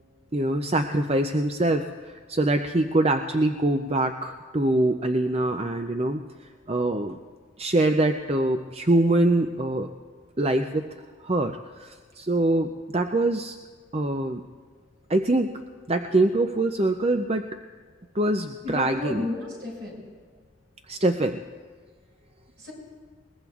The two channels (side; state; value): both; normal; correlation 0.62